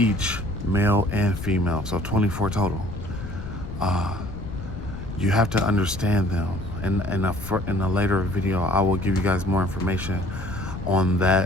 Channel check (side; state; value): left; noise; rumble, 9 dB below the sound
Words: male and female, so 24 total. You have to understand them. In a later video, I will give you guys more information on